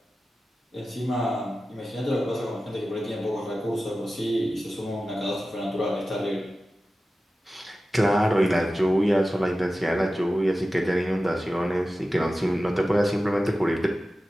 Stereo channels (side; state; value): both; normal; correlation 0.94